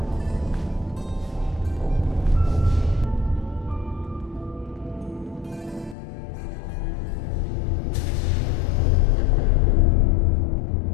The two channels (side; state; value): right; drops out; at 6.0 s